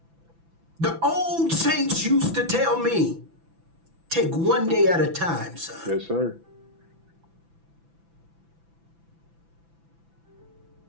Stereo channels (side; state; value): left; late; 6.0 ms